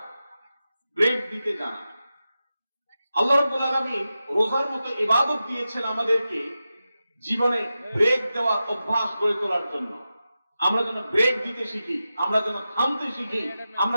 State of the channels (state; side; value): inverted; both; correlation -0.92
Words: ব্রেক দিতে জানা। আল্লাহ রাব্বুল আলামিন রোজার মতো ইবাদত দিয়েছেন আমাদেরকে জীবনে ব্রেক দেওয়ার অভ্যাস গড়ে তোলার জন্য। আমরা যেন ব্রেক দিতে শিখি, আমরা যেন থামতে শিখি,